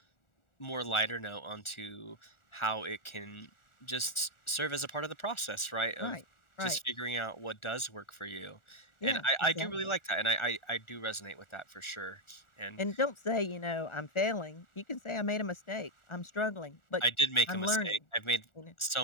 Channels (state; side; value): late; right; 1.4 ms